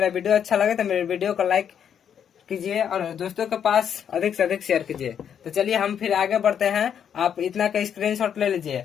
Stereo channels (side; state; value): right; quieter; 8.4 dB